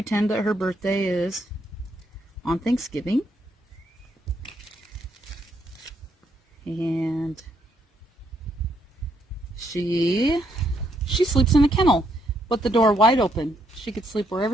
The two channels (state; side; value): normal; both; correlation 0.74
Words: that her birthday is on Thanksgiving. And she sleeps in a kennel with the door wide open. She could sleep